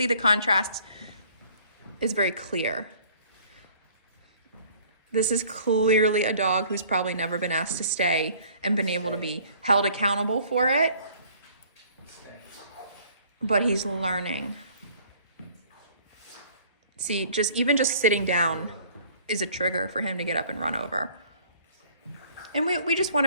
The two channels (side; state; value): both; inverted; correlation -0.55